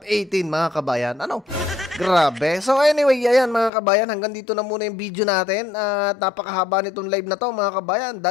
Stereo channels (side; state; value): right; drops out; at 3.7 s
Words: 18 mga kabayan? Ano? Grabe. So anyway, ayan mga kabayan, hanggang dito na muna yung video natin. At napakahaba nitong live na to mga kabayan.